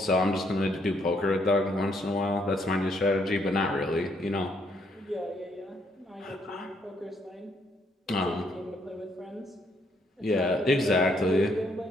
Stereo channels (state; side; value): normal; both; correlation 0.71